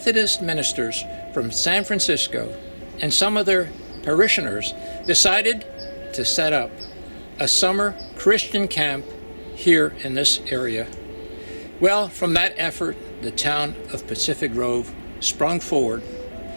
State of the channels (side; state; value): both; inverted; correlation -1.00